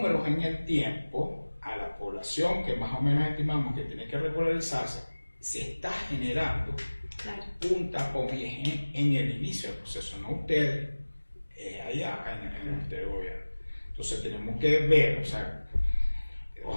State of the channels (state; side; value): inverted; both; correlation -1.00